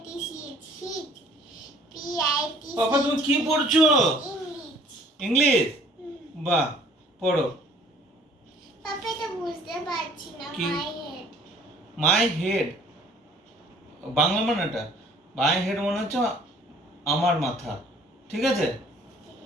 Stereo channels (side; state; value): both; normal; correlation 0.55